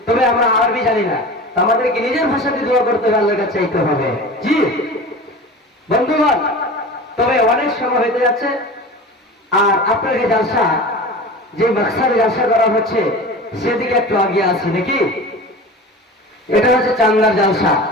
তবে আমরা আরবি জানি না, আমাদেরকে নিজের ভাষাতে দোয়া করতে হবে, আল্লাহর কাছে চাইতে হবে। জি বন্ধুগণ, তবে অনেক সময় হতে যাচ্ছে, আর আপনাকে জালসা, যে মাকসাদে জালসা করা হচ্ছে, সেদিকে একটু আগে আসি নাকি। এটা হচ্ছে চান্দার জালসা,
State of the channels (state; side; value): normal; both; correlation 0.34